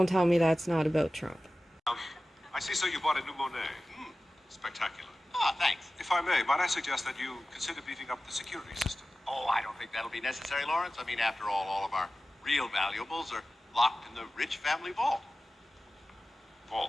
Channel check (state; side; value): normal; both; correlation 0.95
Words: tell me that's not about Trump. I see, so you bought a new Monet. Spectacular. Ah, thanks. If I may, might I suggest that you consider beefing up the security system? Oh, I don't think that'll be necessary, Lawrence. I mean, after all of our real valuables are locked in the Rich family vault.